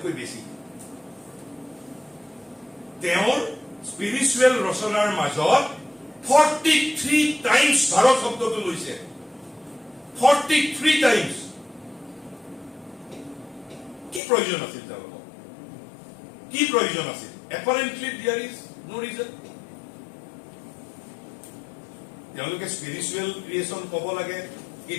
বেছি তেওঁৰ স্পিৰিচুৱেল ৰচনাৰ মাজত 43 টাইমছ ভাৰত শব্দটো লৈছে। 43 টাইমছ। কি প্ৰয়োজন আছিল তেওঁলোকক? কি প্ৰয়োজন আছিল? এপাৰেণ্টলি দেয়াৰ ইজ নো ৰিজন। তেওঁলোকে স্পিৰিচুৱেল ক্ৰিয়েশ্যন ক'ব লাগে,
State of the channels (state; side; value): drops out; right; at 14.2 s